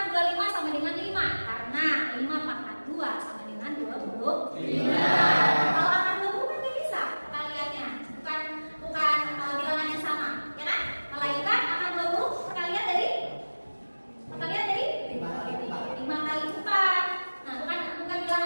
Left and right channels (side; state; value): both; inverted; correlation -1.00